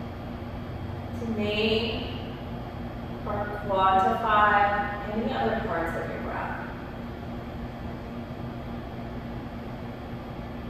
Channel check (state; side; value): identical; both; correlation 1.00